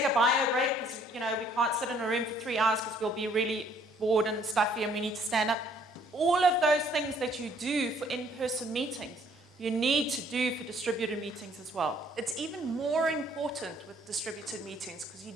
a bio break? Because, we can't sit in a room for 3 hours because we'll be really bored and stuffy and we need to stand up. All of those things that you do for in-person meetings, you need to do for distributed meetings as well. It's even more important with distributed meetings because you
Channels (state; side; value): normal; both; correlation 0.62